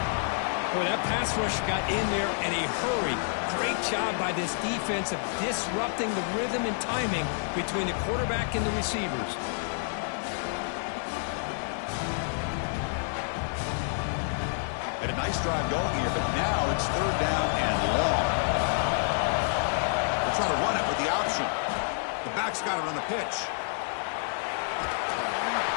Boy, that pass rush got in there in a hurry. Great job by this defense of disrupting the rhythm and timing between the quarterback and the receivers. Had a nice drive going here, but now it's third down and long. They're trying to run it with the option. The back's got it on the pitch.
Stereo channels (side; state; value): right; silent; digital silence